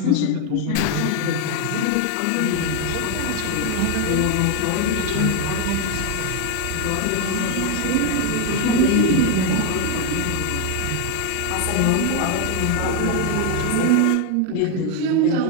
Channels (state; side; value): different; both; correlation 0.01